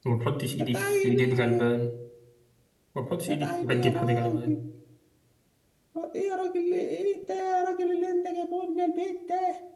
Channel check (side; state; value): both; identical; correlation 1.00